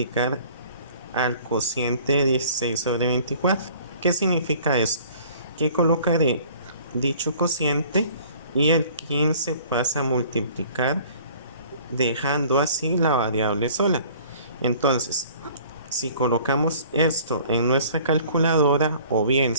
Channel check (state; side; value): inverted; both; correlation -0.51